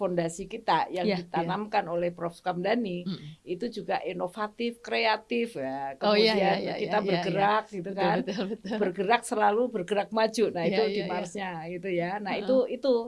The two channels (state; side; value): identical; both; correlation 1.00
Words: kita yang ditanamkan oleh Prof. Sukamdhani, itu juga inovatif, kreatif ya. Kemudian kita bergerak gitu kan, bergerak selalu bergerak maju. Nah itu di Marsnya gitu ya. Nah